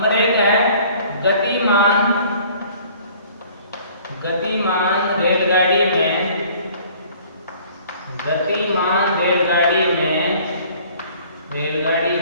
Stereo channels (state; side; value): inverted; both; correlation -0.53